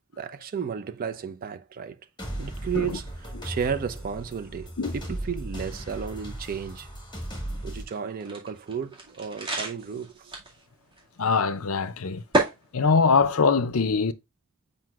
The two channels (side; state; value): both; normal; correlation -0.03